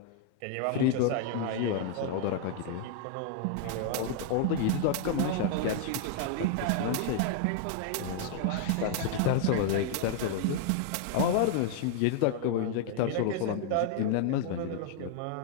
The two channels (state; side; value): different; both; correlation 0.00